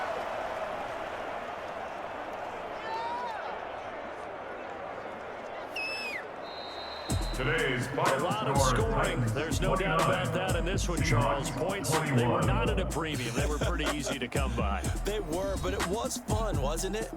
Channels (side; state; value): both; identical; correlation 1.00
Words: Today's A lot of scoring. There's no doubt about that in this one, Charles. Points, they were not at a premium. They were pretty easy to come by. They were, but it was fun, wasn't it?